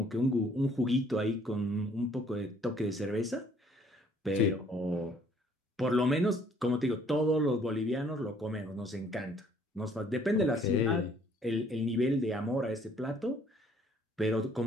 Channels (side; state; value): both; normal; correlation 0.61